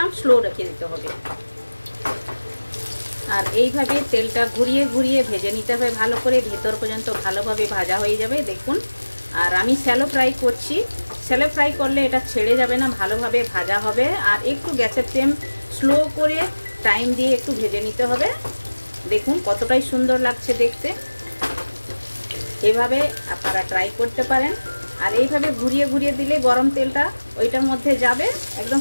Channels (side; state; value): both; inverted; correlation -1.00